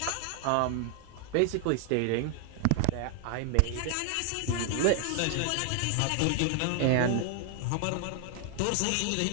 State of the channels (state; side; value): different; both; correlation 0.00